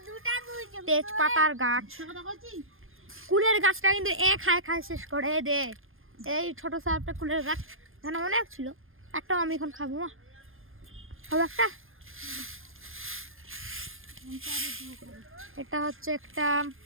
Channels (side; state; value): left; late; 0.60 ms